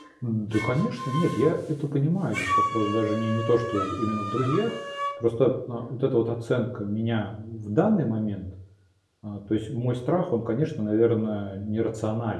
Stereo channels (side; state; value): both; identical; correlation 1.00